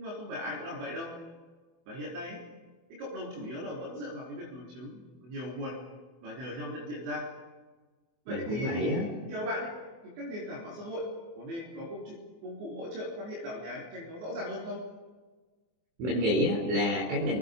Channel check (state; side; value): late; left; 24 ms